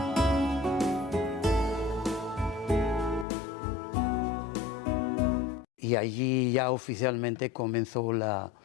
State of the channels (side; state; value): right; drops out; at 3.2 s